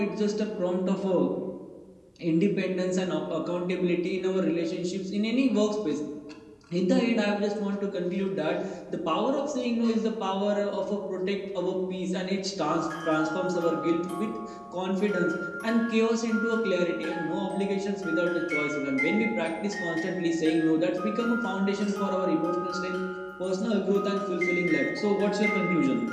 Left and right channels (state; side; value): identical; both; correlation 1.00